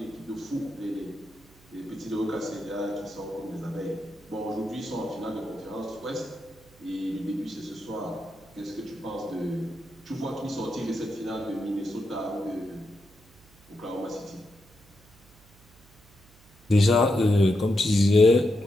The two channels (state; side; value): noise; right; hum, 27 dB below the sound